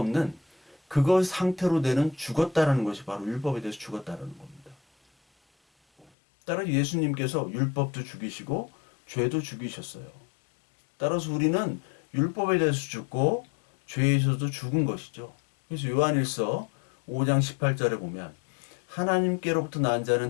그것 상태로 되는 죽었다라는 것이 바로 율법에 대해서 죽었다라는 겁니다. 따라서 예수님께서 율법도 죽이시고 죄도 죽이셨어요. 따라서 우리는 율법에 대해서 죽고 죄에서도 죽은 것이죠. 그래서 요한일서 5장 18절에 보면 하나님께로부터 난 자는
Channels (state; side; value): drops out; right; at 6.1 s